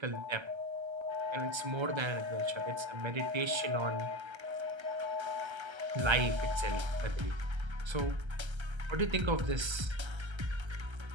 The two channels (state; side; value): late; left; 1.3 ms